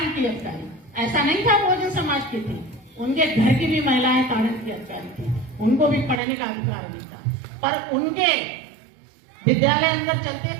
की अधिकारी ऐसा नहीं था बहुजन समाज की थी, उनके घर की भी महिलाएं तारण की अधिकारी थी, उनको भी पढ़ने का अधिकार नहीं था। पर उनके विद्यालय अंदर चलते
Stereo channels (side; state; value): left; drops out; at 6.2 s